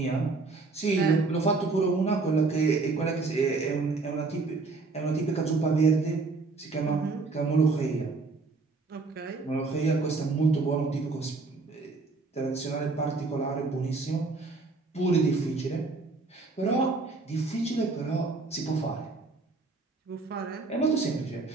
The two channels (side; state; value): left; quieter; 3.9 dB